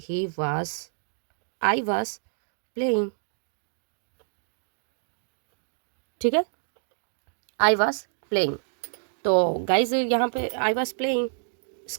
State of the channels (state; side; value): silent; left; digital silence